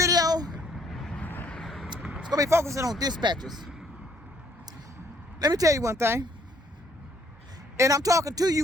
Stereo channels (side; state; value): both; normal; correlation 0.65